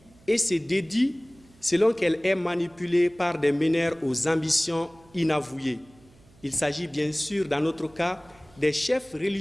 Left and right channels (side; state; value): right; noise; hum, 28 dB below the sound